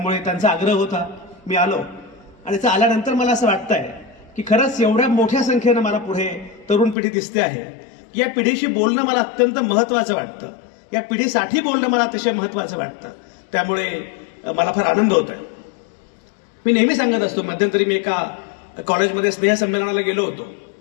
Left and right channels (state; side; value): drops out; right; at 7.0 s